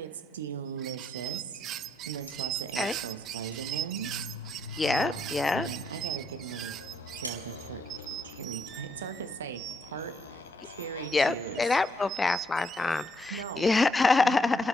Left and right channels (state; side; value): normal; both; correlation 0.73